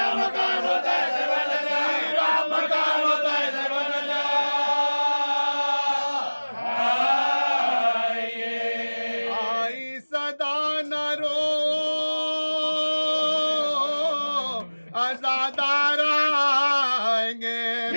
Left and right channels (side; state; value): both; inverted; correlation -1.00